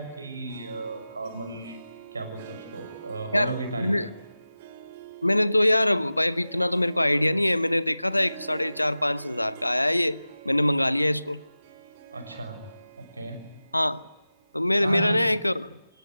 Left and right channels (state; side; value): inverted; both; correlation -0.95